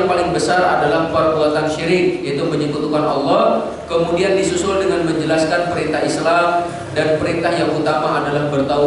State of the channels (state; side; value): identical; both; correlation 1.00